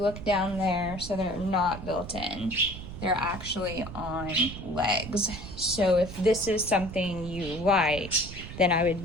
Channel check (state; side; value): noise; right; rumble, 11 dB below the sound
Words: look down there, so they're not built in. They're actually on legs. So if this is something you like, then I would